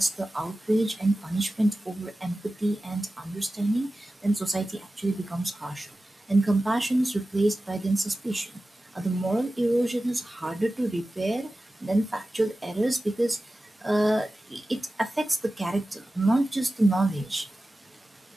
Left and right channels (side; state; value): both; normal; correlation 0.95